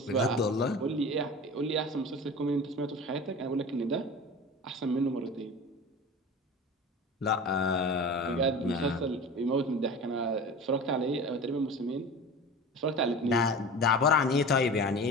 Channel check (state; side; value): normal; both; correlation 0.34